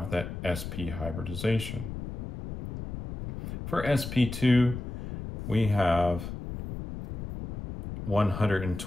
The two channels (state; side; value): noise; left; rumble, 8 dB below the sound